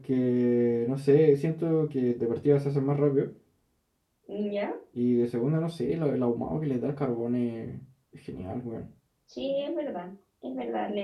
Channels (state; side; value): identical; both; correlation 1.00